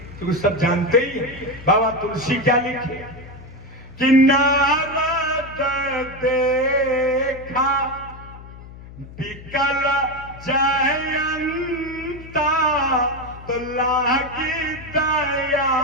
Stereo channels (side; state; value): left; noise; hum, 16 dB below the sound